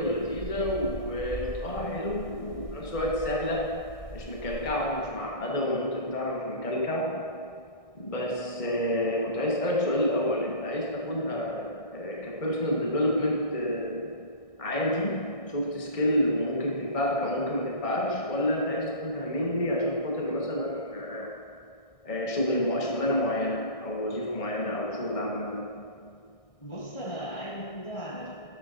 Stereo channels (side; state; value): right; late; 1.6 ms